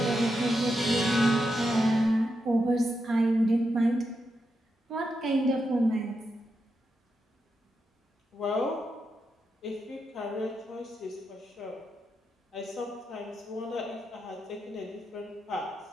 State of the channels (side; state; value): both; normal; correlation 0.85